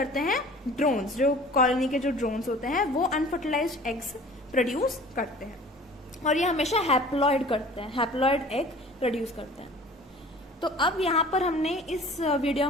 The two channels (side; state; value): both; normal; correlation 0.46